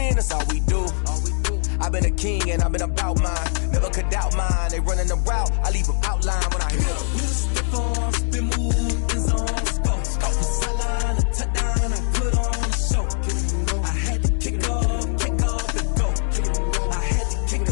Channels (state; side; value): silent; right; digital silence